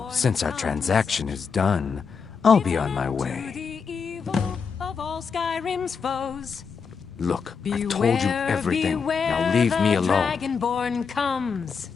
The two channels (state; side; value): quieter; right; 5.8 dB